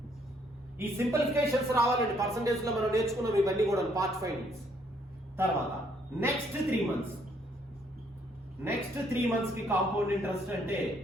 ఈ సింప్లిఫికేషన్స్ రావాలండి. పర్సంటేజ్ లో మనం నేర్చుకున్నాం ఇవన్నీ కూడా పార్ట్ ఫైండింగ్స్. తర్వాత నెక్స్ట్ 3 మంత్స్ కి కాంపౌండ్ ఇంట్రెస్ట్ అంటే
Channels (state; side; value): normal; both; correlation 0.68